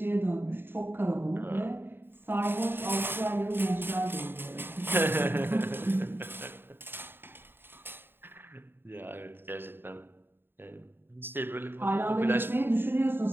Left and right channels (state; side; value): late; left; 0.10 ms